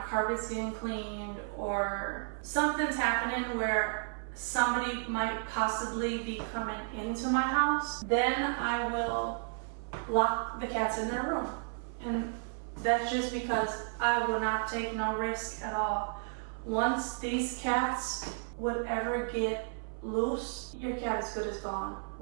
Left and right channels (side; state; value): left; silent; 56 dB below the other